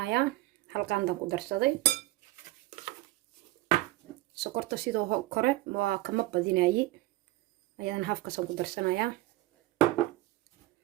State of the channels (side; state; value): left; quieter; 17.5 dB